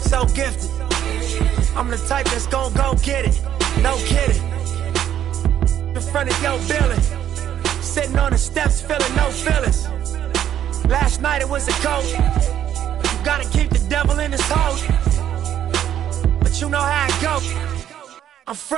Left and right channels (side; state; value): left; quieter; 10.5 dB